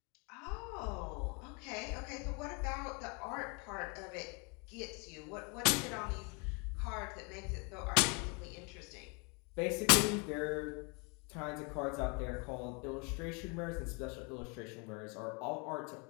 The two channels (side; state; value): right; quieter; 32.8 dB